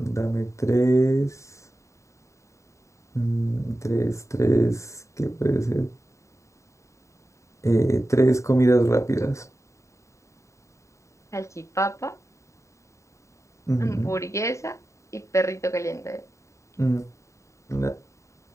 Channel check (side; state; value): right; late; 0.14 ms